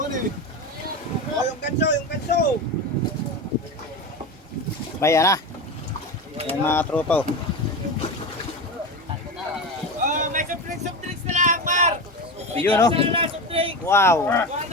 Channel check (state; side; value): normal; both; correlation 0.22